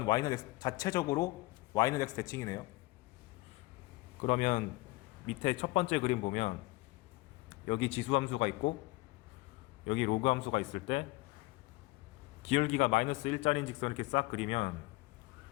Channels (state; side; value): quieter; right; 21.5 dB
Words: x, 자체적으로 y는 x 대칭이네요. 그러면 밑에 첫 번째 그림 보면 여기 지수함수가 있고 여기 로그함수가 있을 때 기울기가 마이너스 1짜리인 직선 이렇게 싹 그리면